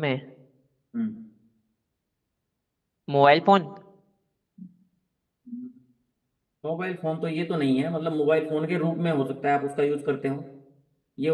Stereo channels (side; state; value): both; identical; correlation 1.00